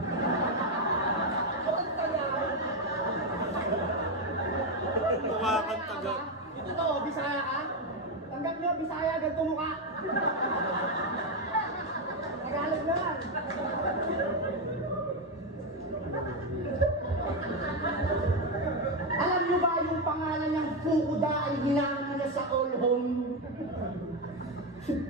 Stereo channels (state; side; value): normal; both; correlation 0.08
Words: ang Tagalog. Mukha kang taga. Ito to, Bisaya ka? Tanggap nyo, Bisaya, ganito mukha. Tagalog naman. Alam nyo ba yung pangalan niyang Fukuda ay hinangan niya sa all home?